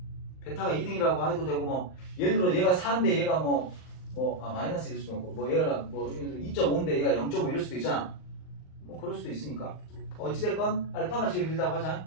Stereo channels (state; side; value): late; right; 39 ms